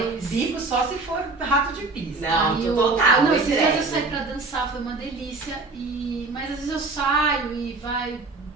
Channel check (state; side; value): quieter; left; 3.6 dB